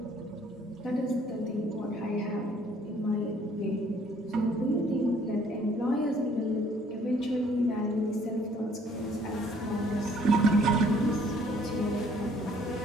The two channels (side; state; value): both; normal; correlation 0.61